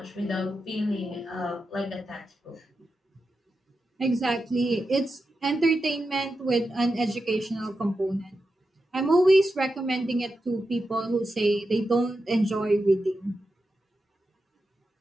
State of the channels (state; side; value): normal; both; correlation 0.89